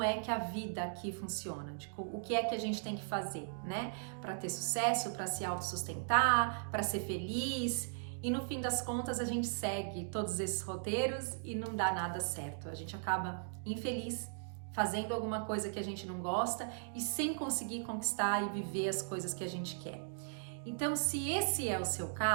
é que a vida aqui funciona, de o que é que a gente tem que fazer, né? Para ter sucesso, para se autossustentar, para ser feliz. E no fim das contas a gente segue todos esses roteiros e não dá nada certo. A gente acaba infeliz, fazendo alguma coisa que a gente não gosta e sem conseguir conquistar e viver as coisas que a gente quer. Então, se esse é o seu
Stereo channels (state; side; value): silent; left; digital silence